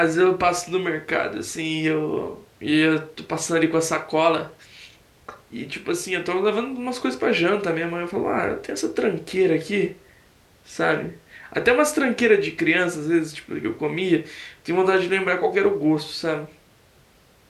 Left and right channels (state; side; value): identical; both; correlation 1.00